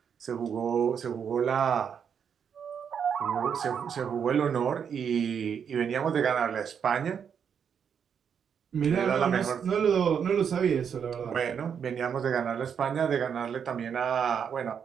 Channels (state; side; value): quieter; left; 7.4 dB